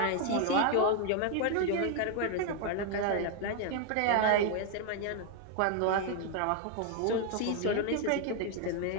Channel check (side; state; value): both; different; correlation 0.00